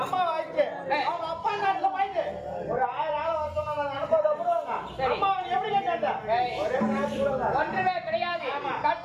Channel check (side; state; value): both; identical; correlation 1.00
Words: அம்மா வாய்க்கு அவங்க அப்பா நாட்டுல வாய்க்கு ஒரு 1000 ஆளை வச்சோம்னா அனுப்பதை விடுவாங்க. அம்மா எப்படி கேட்டாங்க? ஒன்றுமே கிடையாது.